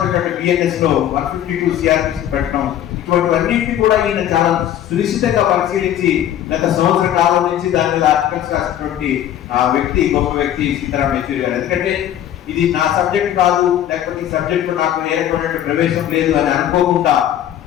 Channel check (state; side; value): quieter; right; 11.2 dB